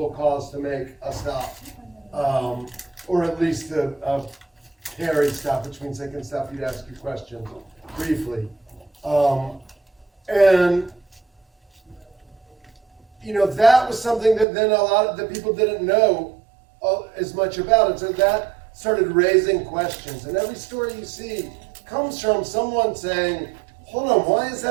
cause to make a stop, or at least a Terry stop, which means they can stop you to ask you questions briefly. And that was something that then a lot of the people didn't know as much about. And so that started raising questions. And every story you see comes from someone saying, hold on, why is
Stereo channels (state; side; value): drops out; left; at 14.5 s